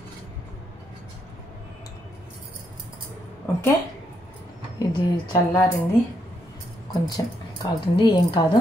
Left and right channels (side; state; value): both; normal; correlation 0.77